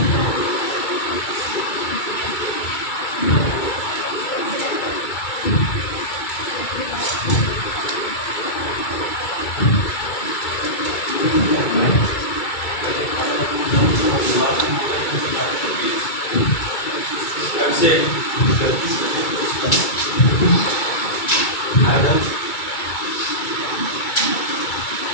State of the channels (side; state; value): right; late; 2.3 ms